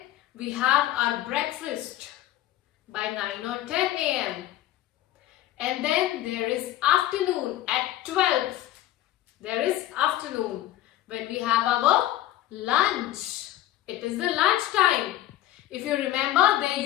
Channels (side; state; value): right; quieter; 14.0 dB